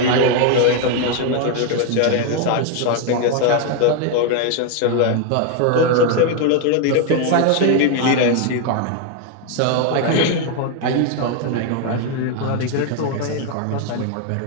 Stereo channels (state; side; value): different; both; correlation 0.01